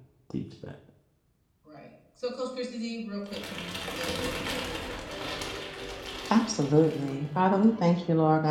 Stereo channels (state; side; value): identical; both; correlation 1.00